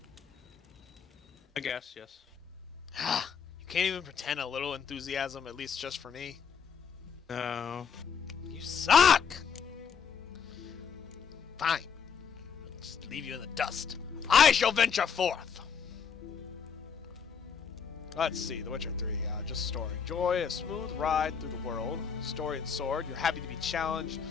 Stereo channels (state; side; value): quieter; right; 6.7 dB